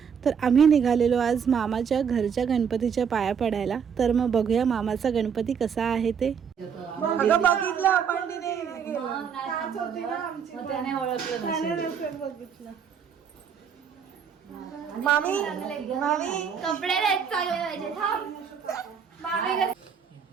तर आम्ही निघालेलो आज मामाच्या घरच्या गणपतीच्या पाया पडायला. तर मग बघूया मामाचा गणपती कसा आहे ते. अगं बघितलं आपण तिने गेलं त्याच होती ना आमची मग त्याने ओळखलं नसेल. बघितलं. मामी मामी कपडे नाही चांगले पाहिजे. मामी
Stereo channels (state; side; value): quieter; left; 7.1 dB